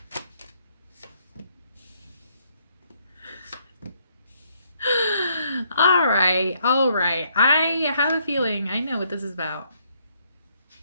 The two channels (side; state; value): both; inverted; correlation -0.70